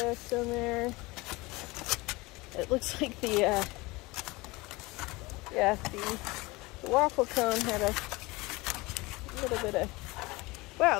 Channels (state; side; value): quieter; right; 22.7 dB